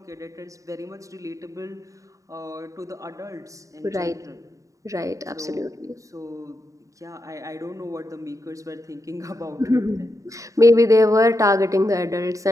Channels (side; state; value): left; late; 0.16 ms